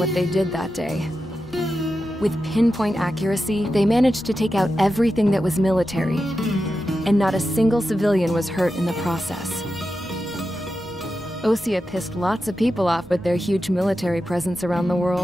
they did that day. With pinpoint accuracy, they managed to take out everything that was military, and not a single civilian was hurt in the process. Osea pissed lots of people off with their huge military presence around the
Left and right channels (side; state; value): both; normal; correlation 0.90